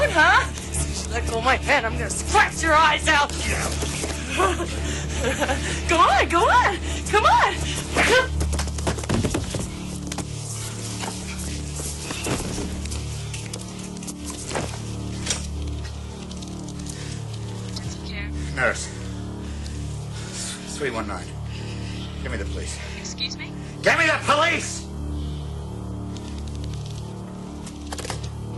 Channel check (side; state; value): both; identical; correlation 1.00